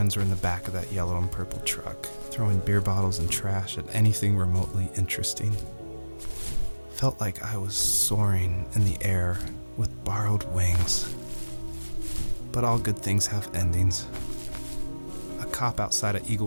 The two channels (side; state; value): both; inverted; correlation -1.00